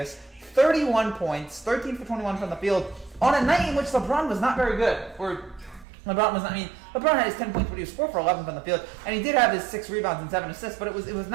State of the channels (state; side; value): drops out; left; at 5.9 s